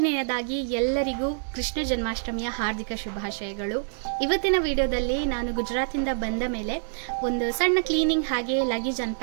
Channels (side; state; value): left; silent; digital silence